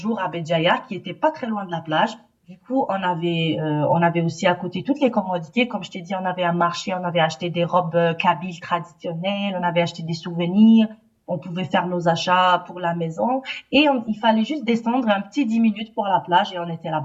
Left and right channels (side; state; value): both; identical; correlation 1.00